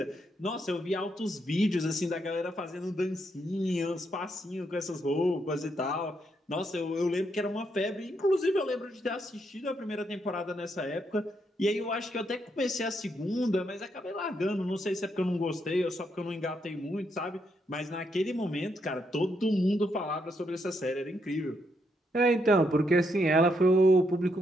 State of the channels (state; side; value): normal; both; correlation 0.78